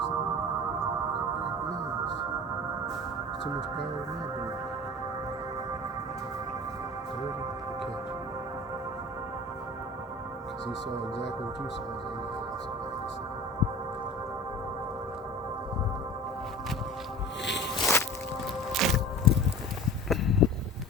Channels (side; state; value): both; normal; correlation 0.38